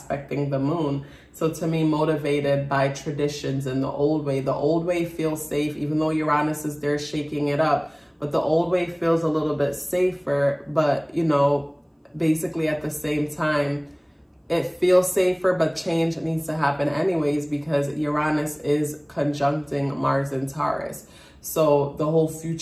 the moon. So to me, motivated by traditions and the old way. The old way feels safe, even though Uranus is there shaking it up. But the old way feels a little bit safer. But, you know, basically at the same time, it feels safer, but change needs to happen anyways because Uranus is conjuncting Mars in Taurus. So the whole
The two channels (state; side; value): identical; both; correlation 1.00